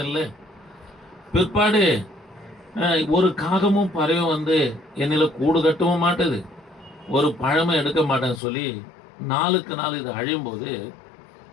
இல்லை. பிற்பாடு ஒரு காகமும் பறவையும் வந்து என்னில கூடு கட்டவும் மாட்டுது, ஒரு பழமை எடுக்க மாட்டேன்னு சொல்லி நாளுக்கு நாள் இது அழியும் போது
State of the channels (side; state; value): right; drops out; at 8.4 s